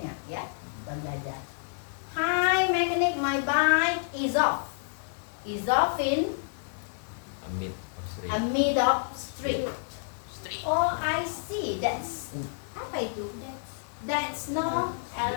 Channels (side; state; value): right; silent; 58 dB below the other